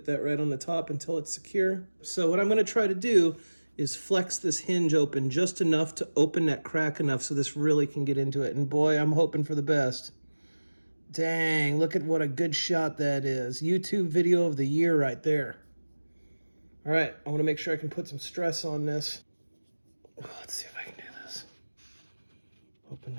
that right on the top until it's secure. So what I'm gonna try to do is flex this hinge open just enough to open that crack enough so this really can get into it. And boy, I'm hoping for the best. Dang, look at what a good shot that is. YouTube video of the year right there. All right, I wanna make sure I can put some stress on this. Let's see if I can do this. Open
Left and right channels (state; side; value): inverted; both; correlation -1.00